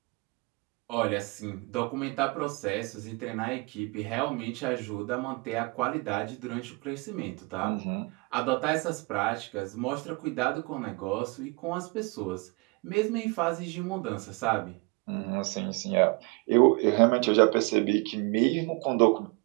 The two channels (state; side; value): quieter; left; 28.9 dB